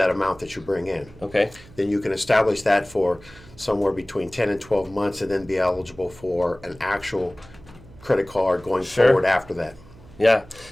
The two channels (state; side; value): noise; right; hum, 22 dB below the sound